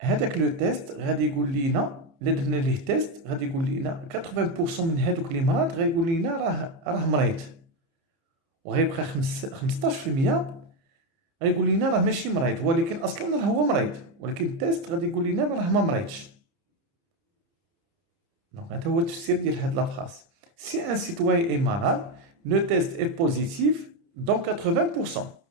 هذاك لو تيست غادي يقول لينا الا درنا ليه تيست غادي يقول لينا 80% من هذوك اللي مرض غايقول لينا راه مريض وغيبقى 15% غيقول لينا راه ماشي مريض ولكن اصلا راه هو مريض ولكن التيست غادي يقول لينا راه ما مريضش. دونك هذا هو التفسير ديال هاد لا فراس. Si un citoyen est malade, le test est positif dans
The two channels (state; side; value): late; left; 30 ms